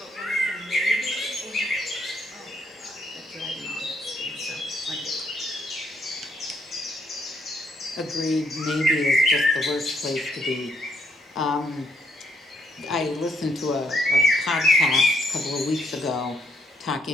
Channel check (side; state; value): both; normal; correlation 0.72